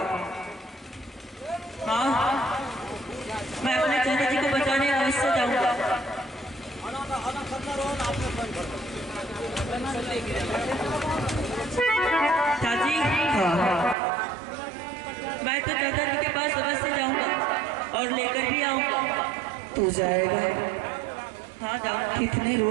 हाँ, मैं अपने चाचा जी को बचाने अवश्य जाऊंगा। चाची, मैं तो चाचा जी के पास अवश्य जाऊंगा और लेकर भी आऊंगा। तू जाएगा? हाँ जाऊंगा। कितने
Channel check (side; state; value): left; drops out; at 14.0 s